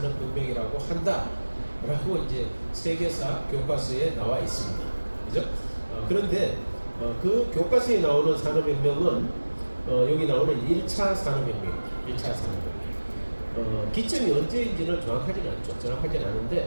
한다라고 이제 세계사 교과서에 나와 있습니다. 그죠? 그런데 그 교과서에 나오는 산업혁명은 여기 나오는 1차 산업혁명입니다. 1차 산업혁명. 기점이 언제인지는 정확하지는 않죠. 정확하지는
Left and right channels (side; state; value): both; inverted; correlation -1.00